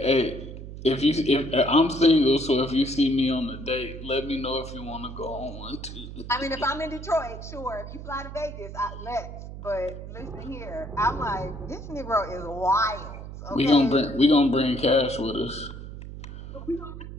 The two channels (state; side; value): noise; right; hum, 11 dB below the sound